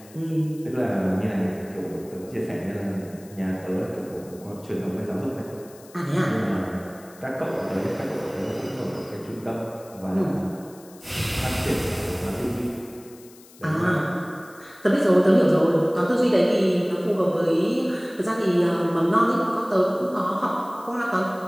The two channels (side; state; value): left; noise; hiss, 23 dB below the sound